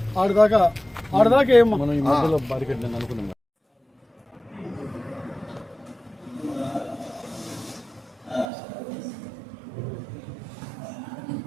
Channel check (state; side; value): drops out; left; at 8.5 s